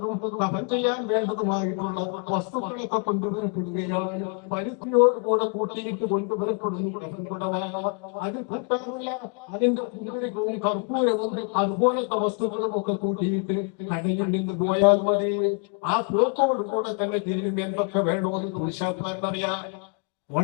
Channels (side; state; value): right; quieter; 38.9 dB